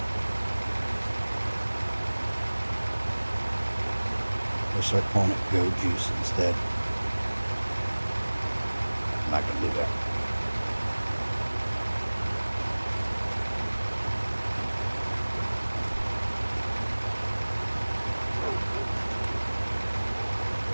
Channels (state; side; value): inverted; both; correlation -1.00